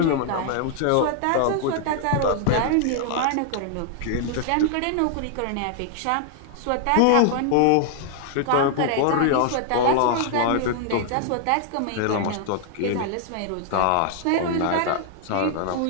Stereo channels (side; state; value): both; different; correlation 0.00